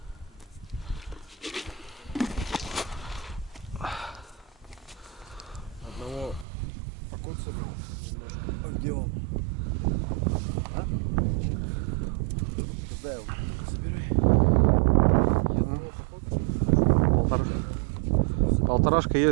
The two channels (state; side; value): drops out; left; at 6.5 s